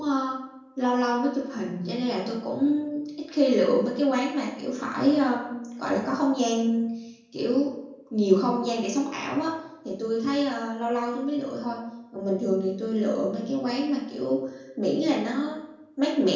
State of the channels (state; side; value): identical; both; correlation 1.00